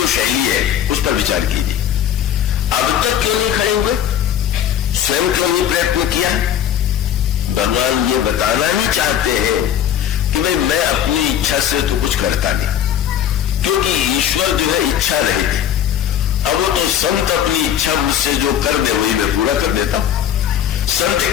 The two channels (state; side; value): quieter; right; 10.2 dB